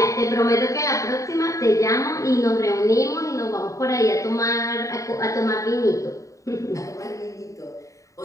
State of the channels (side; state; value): right; late; 0.16 ms